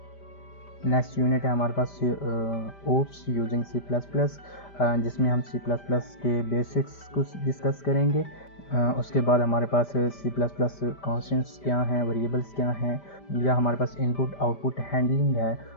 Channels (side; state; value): right; late; 5.1 ms